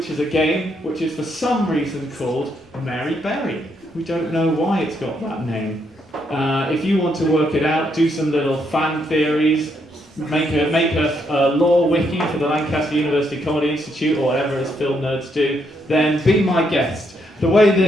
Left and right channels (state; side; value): normal; both; correlation 0.76